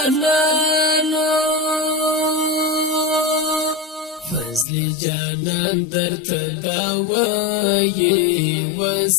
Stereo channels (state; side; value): drops out; right; at 4.7 s